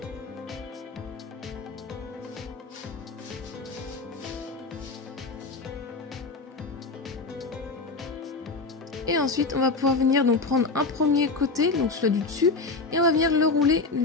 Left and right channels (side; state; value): right; quieter; 3.9 dB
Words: Et ensuite on va pouvoir venir donc prendre un premier côté, donc celui du dessus, et on va venir le rouler,